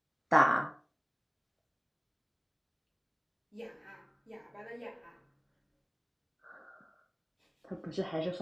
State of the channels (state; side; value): identical; both; correlation 1.00